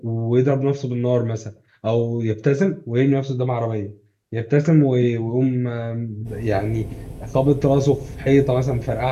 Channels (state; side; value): identical; both; correlation 1.00